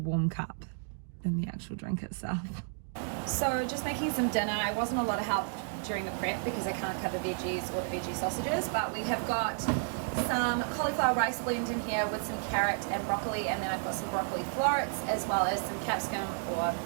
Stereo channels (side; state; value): left; silent; 56 dB below the other